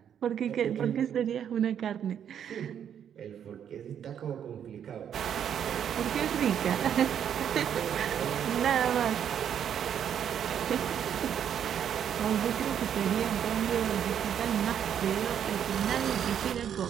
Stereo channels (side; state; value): left; quieter; 8.9 dB